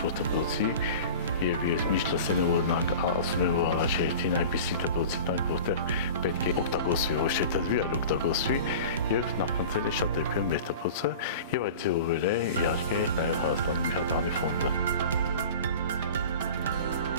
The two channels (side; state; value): both; inverted; correlation -0.37